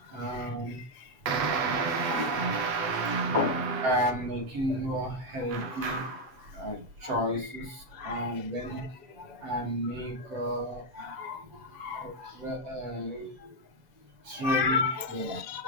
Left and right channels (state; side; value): late; left; 8.0 ms